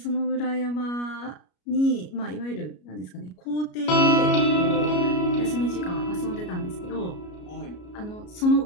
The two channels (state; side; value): late; right; 33 ms